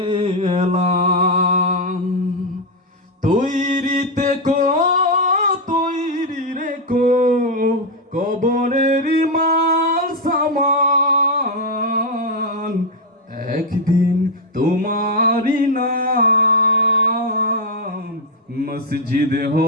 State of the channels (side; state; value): both; normal; correlation 0.03